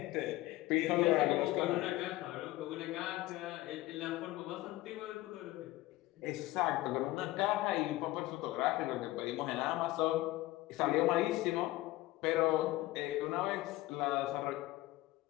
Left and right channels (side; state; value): right; quieter; 17.8 dB